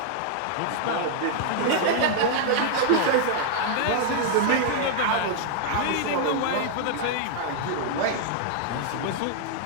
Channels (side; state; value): both; different; correlation -0.01